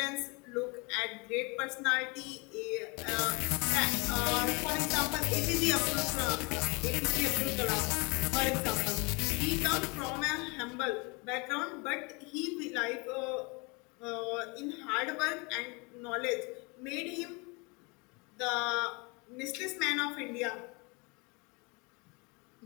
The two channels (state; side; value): quieter; right; 29.1 dB